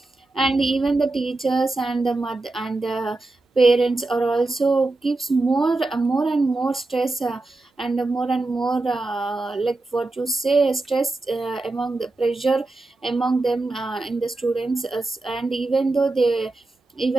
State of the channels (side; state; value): left; quieter; 3.1 dB